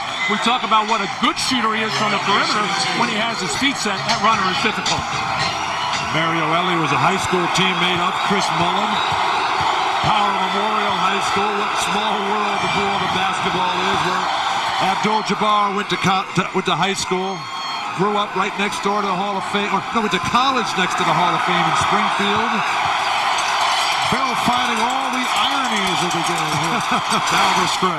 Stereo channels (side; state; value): both; identical; correlation 1.00